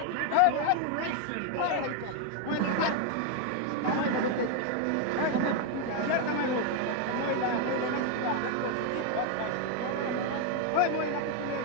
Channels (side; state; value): both; different; correlation 0.01